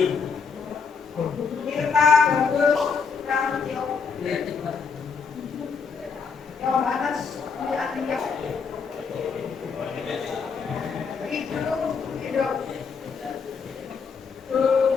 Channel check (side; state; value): right; quieter; 5.6 dB